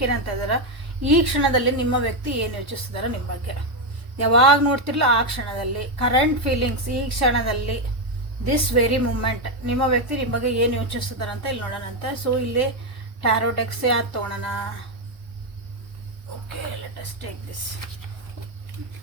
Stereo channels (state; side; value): late; left; 1.2 ms